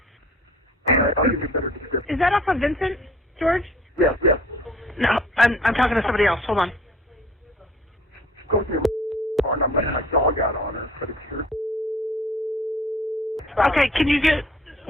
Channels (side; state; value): both; normal; correlation 0.51